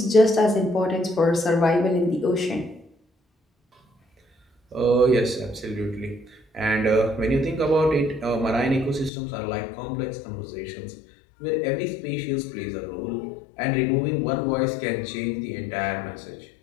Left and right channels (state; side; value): drops out; right; at 9.1 s